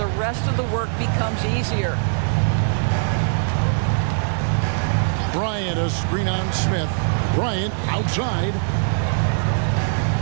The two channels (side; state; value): left; silent; digital silence